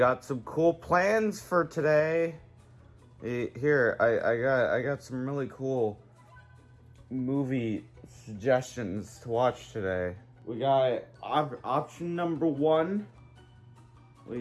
some cool plans for today. Here, I got some really cool movie suggestions to watch today. We got option number 1.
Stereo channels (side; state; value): both; identical; correlation 1.00